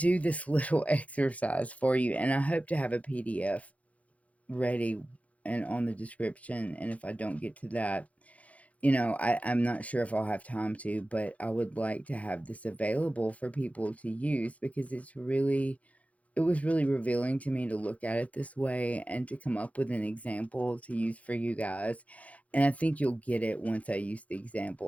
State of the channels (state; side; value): late; right; 0.067 ms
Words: this little exercise for you, and I hope to have a PDF ready and on the description. And if I don't get to that, I'm not sure if I'll have time to, but I would like to have this available for people to use, because it was really revealing to me to look at it this way and to come up with an example to use for you guys. And I think you'll get it once I use the